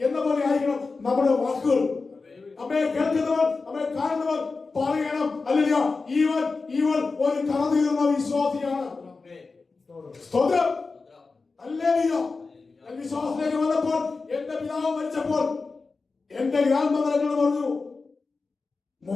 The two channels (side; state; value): right; quieter; 4.1 dB